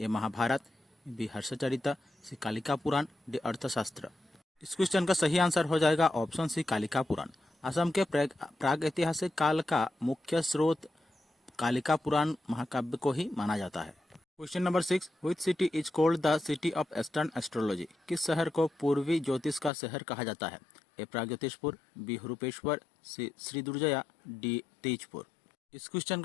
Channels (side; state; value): right; drops out; at 19.7 s